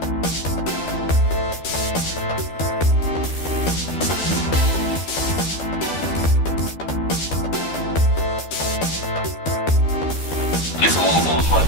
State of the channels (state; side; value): late; right; 12 ms